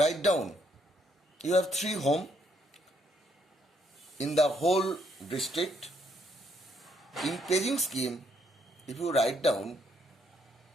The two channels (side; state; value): both; normal; correlation 0.71